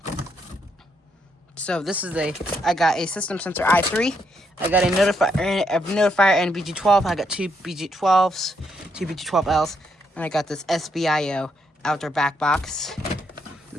So this is I got a system sensor i3. I got a notifier and BG12. I got two BG12s, two BG12Ls, and I got this SBIO outdoor back box.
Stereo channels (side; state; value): both; normal; correlation 0.76